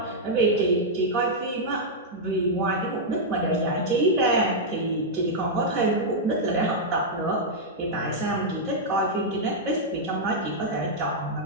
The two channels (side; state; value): both; normal; correlation -0.05